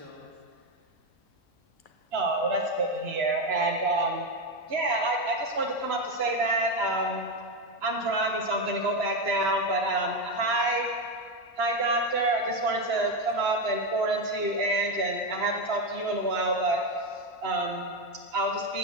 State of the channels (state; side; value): normal; both; correlation 0.10